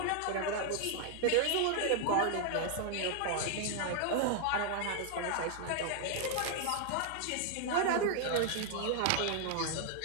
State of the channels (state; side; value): different; both; correlation 0.00